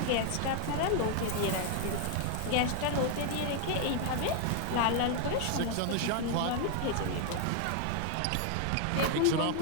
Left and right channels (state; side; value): different; both; correlation 0.00